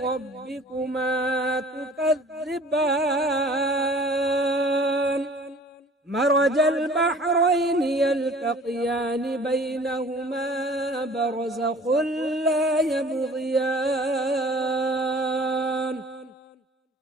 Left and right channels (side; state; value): both; normal; correlation 0.49